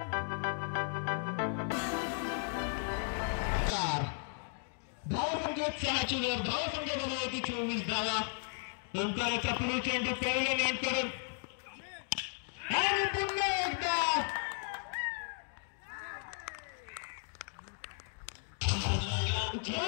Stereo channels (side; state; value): right; silent; 54 dB below the other